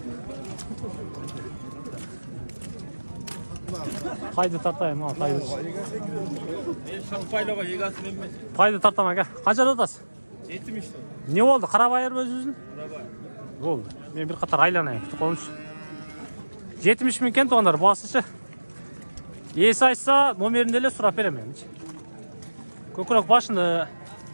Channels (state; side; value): inverted; both; correlation -1.00